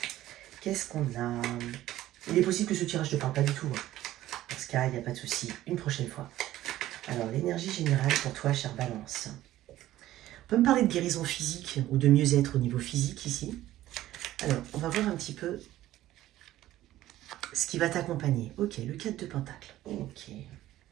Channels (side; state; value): left; quieter; 14.5 dB